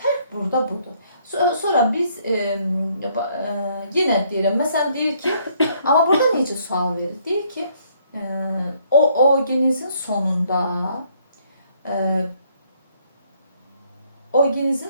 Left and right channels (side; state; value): both; inverted; correlation -0.66